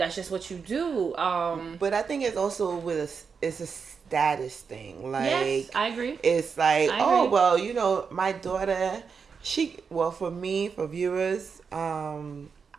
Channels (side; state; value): left; quieter; 5.8 dB